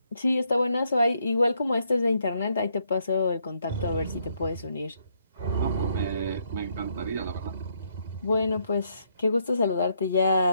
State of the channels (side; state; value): both; inverted; correlation -0.73